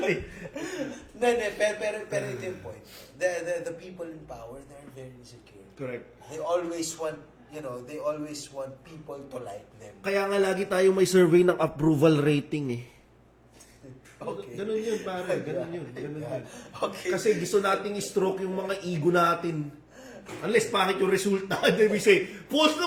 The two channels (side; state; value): both; identical; correlation 1.00